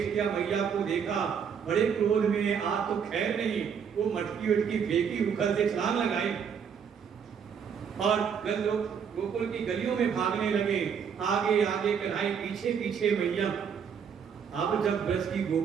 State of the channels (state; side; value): quieter; left; 7.2 dB